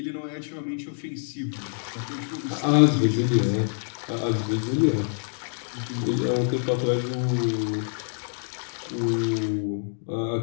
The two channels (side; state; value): right; silent; digital silence